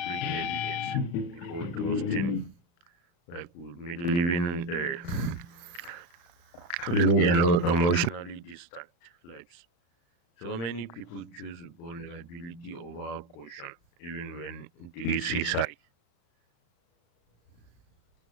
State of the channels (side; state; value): right; late; 35 ms